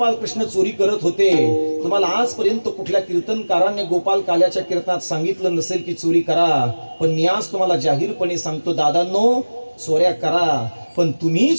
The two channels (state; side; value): inverted; both; correlation -1.00